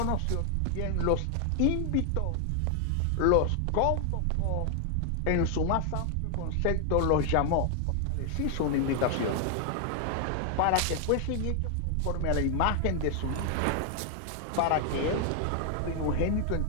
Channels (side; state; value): both; different; correlation 0.00